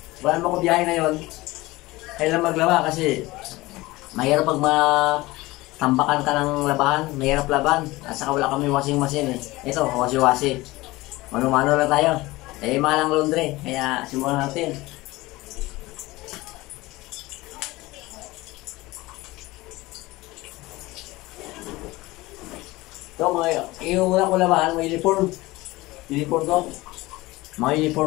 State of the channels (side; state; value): right; quieter; 20.1 dB